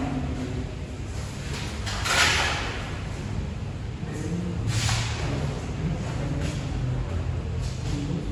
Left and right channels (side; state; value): both; identical; correlation 1.00